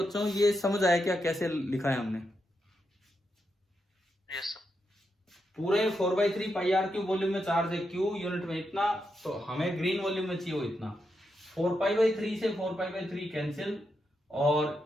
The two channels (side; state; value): both; normal; correlation 0.84